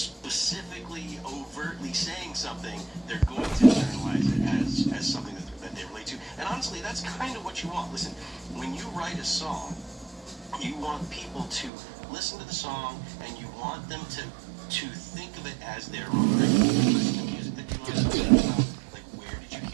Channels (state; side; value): drops out; left; at 11.7 s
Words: overtly saying something, they're going to internalize it as something that they relate to. And honestly, that's kind of what you want. Listen, when you write a song, you want people to listen to the song, and you want them to think of it as their own. Like, listen to music that you love. Like, where did you